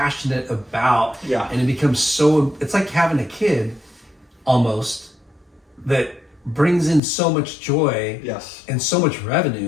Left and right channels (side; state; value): right; drops out; at 7.0 s